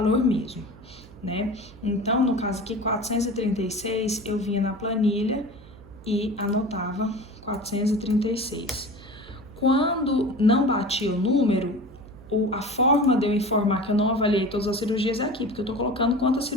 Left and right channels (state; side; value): noise; right; hum, 21 dB below the sound